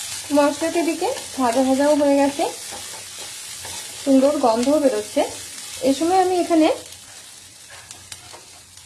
মশলা একটা দিকে ভাজা ভাজাও হয়ে গেছে, সুন্দর গন্ধও বেরোচ্ছে। এই সময় আমি এখানে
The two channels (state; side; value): identical; both; correlation 1.00